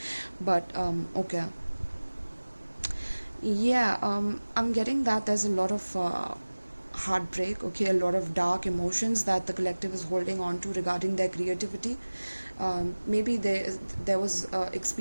But okay. Yeah, I'm getting that there's a lot of heartbreak, okay, a lot of dark emotions that the collective is holding on to regarding their creativity. Maybe there was an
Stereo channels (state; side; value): inverted; both; correlation -1.00